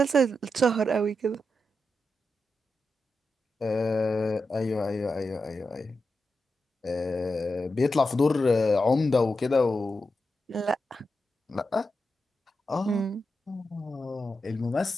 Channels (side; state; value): both; normal; correlation 0.88